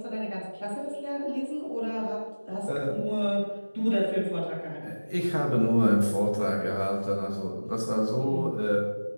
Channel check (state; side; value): inverted; both; correlation -1.00